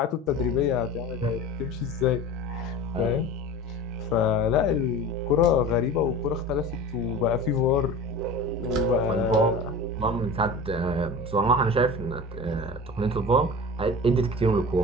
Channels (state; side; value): normal; both; correlation 0.34